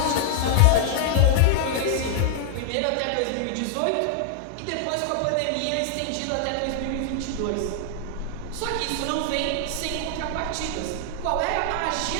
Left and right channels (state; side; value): different; both; correlation -0.01